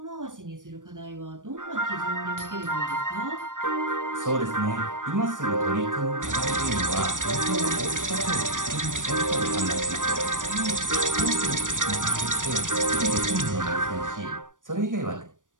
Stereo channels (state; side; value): late; left; 0.88 ms